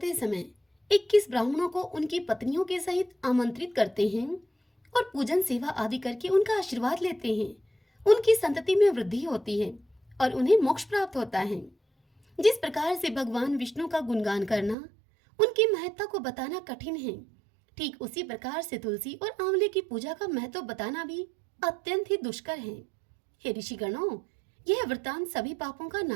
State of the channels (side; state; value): left; drops out; at 14.8 s